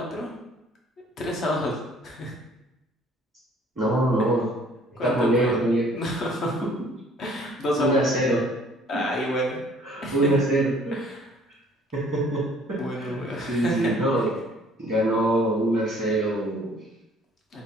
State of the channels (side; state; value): both; normal; correlation 0.57